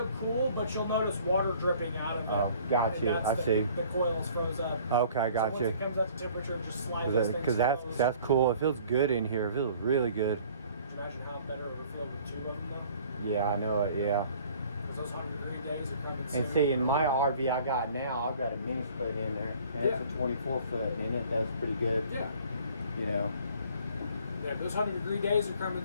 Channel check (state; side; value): inverted; both; correlation -0.53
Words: cool, but you'll notice water dripping out of it. Oh, got And you. that's I the, see. The coil's froze up. Okay. Got so you. once it comes up to temperature, just slide those things Because that's closed. cool. It feels good in here. It feels really good. Can you imagine how better it would feel with 2 of them though? Yeah, I know it. Yeah. Because those 100-degree days are coming soon. And see, in my RV I got now, I've got a mini split in there, and Yeah. it's a 24 foot, and it does pretty good. Yeah. You know. Yeah, those 100-degree days are